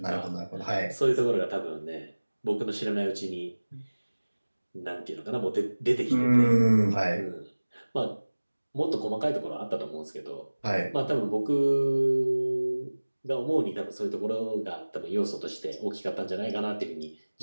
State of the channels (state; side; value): inverted; both; correlation -1.00